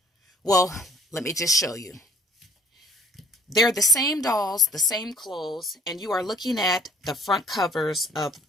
Well, let me just show you. They're the same dolls, the same clothes, and you are looking at the front covers of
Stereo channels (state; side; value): normal; both; correlation 0.56